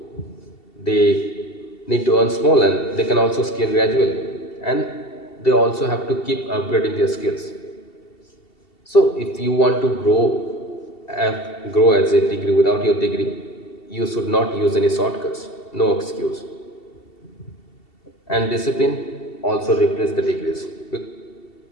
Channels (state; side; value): late; right; 2.7 ms